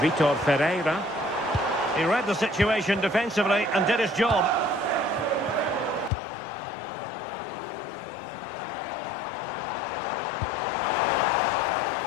Ferreira. He read the situation defensively and did his job.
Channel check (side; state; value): right; drops out; at 6.1 s